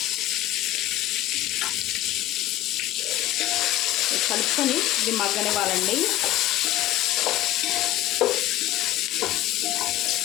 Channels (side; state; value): right; quieter; 14.4 dB